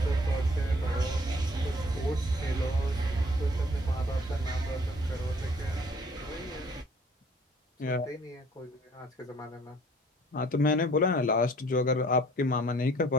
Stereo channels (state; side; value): normal; both; correlation 0.56